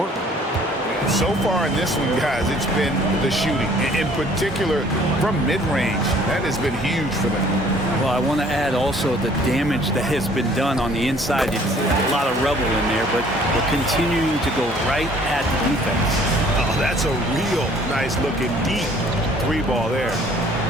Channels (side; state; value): both; normal; correlation 0.56